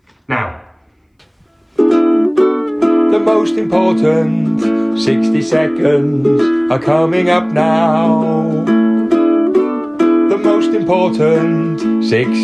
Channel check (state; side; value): identical; both; correlation 1.00